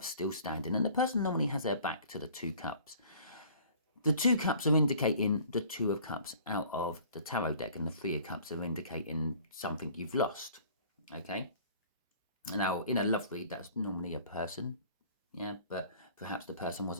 still standing, and the person normally has their back to the 2 cups. The 2 cups are indicating the 2 of Cups out of the tarot deck, and the 3 of Cups are indicating something you've lost. Okay? Now, in a love read, that's normally a person, but perhaps the person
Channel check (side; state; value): both; inverted; correlation -0.50